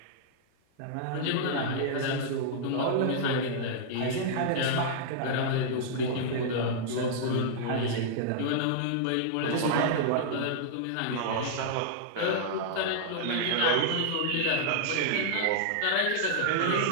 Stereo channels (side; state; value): both; different; correlation -0.02